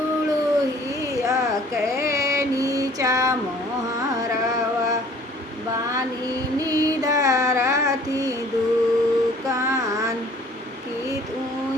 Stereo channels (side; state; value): both; normal; correlation 0.53